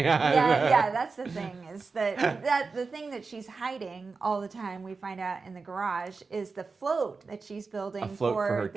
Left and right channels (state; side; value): quieter; left; 4.4 dB